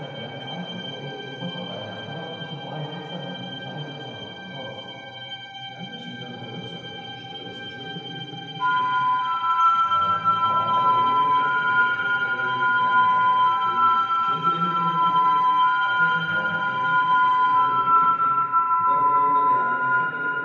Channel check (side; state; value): both; identical; correlation 1.00